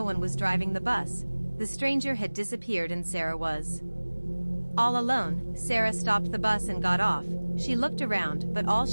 one was driving the bus. The stranger had disappeared and Sarah was all alone. Sarah stopped the bus and got off. She looked around, but all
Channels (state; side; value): inverted; both; correlation -1.00